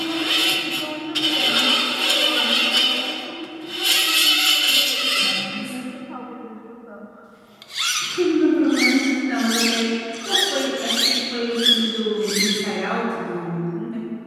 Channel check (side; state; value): both; identical; correlation 1.00